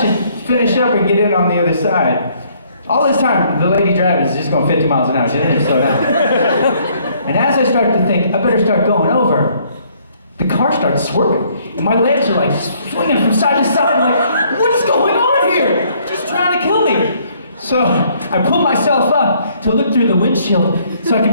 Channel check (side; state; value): both; inverted; correlation -0.65